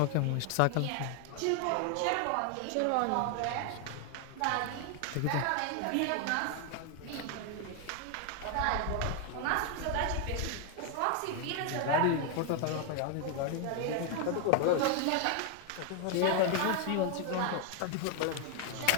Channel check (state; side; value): different; both; correlation 0.00